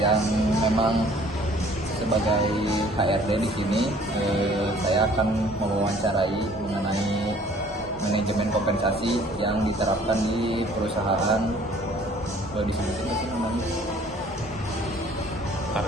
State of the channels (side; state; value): both; normal; correlation 0.55